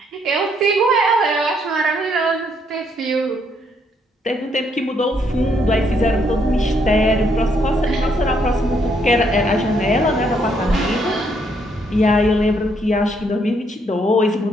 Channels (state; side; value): normal; both; correlation 0.72